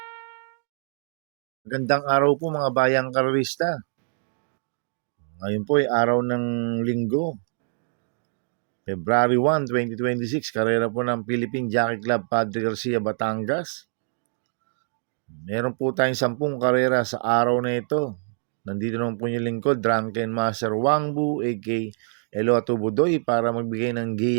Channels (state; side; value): silent; left; digital silence